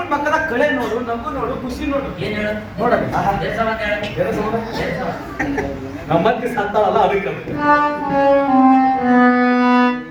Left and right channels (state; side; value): identical; both; correlation 1.00